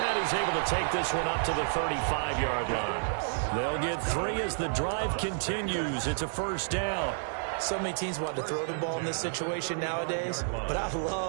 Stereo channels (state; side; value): silent; left; digital silence